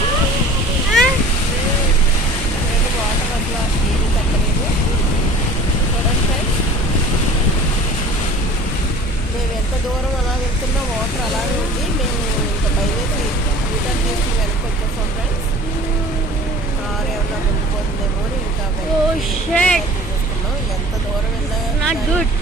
వాటర్ అట్లా ఏమీ తగ్గలేదు. చూడండి ఫ్రెండ్స్, మేము ఎంత దూరం అలా వెళ్తున్నా వాటర్ అలానే ఉంది. మేము ఇంకా బయలుదేరి రిటర్న్ చేసి వెనక్కి వచ్చేసాం ఫ్రెండ్స్. కార్ ఏమన్నా ముందుపోతుందేమో అని ఇంకా చూస్తున్నాం. ఎంత దూరం వెళ్ళినా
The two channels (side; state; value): both; normal; correlation 0.45